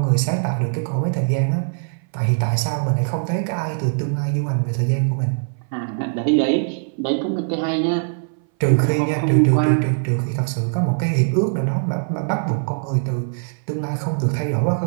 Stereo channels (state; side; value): silent; left; 60 dB below the other